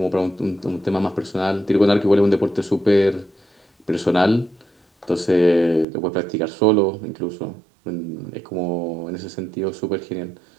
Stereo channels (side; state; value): left; drops out; at 5.9 s